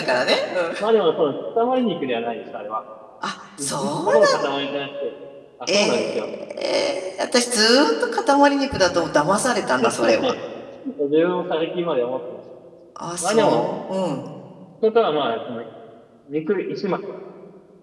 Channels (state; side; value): identical; both; correlation 1.00